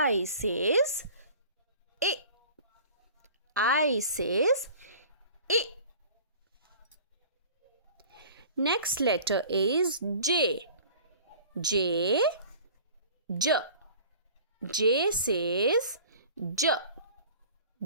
says Next letter is J. J says J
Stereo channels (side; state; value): both; inverted; correlation -0.44